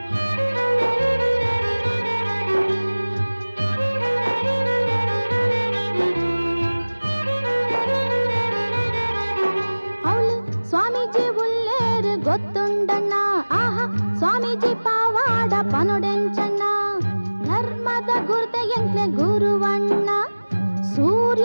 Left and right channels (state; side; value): inverted; both; correlation -1.00